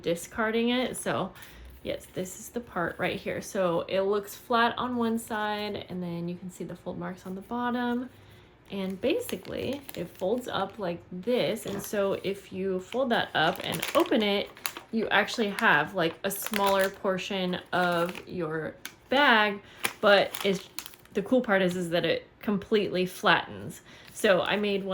discarding it. So yes, this is the part right here. So it looks flat on one side, and then you can see the fold marks on the bottom. And basically it folds up like this. And so if you fold that up and open it, you actually have like a smaller portion of your bag, but the cool part is that it completely flattens. So I made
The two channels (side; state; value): both; identical; correlation 1.00